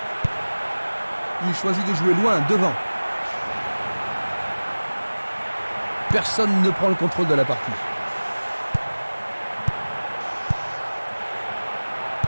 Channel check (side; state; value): both; inverted; correlation -1.00